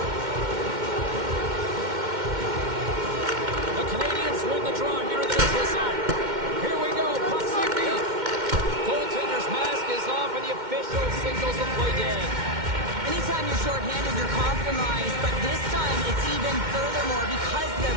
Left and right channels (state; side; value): late; left; 2.1 ms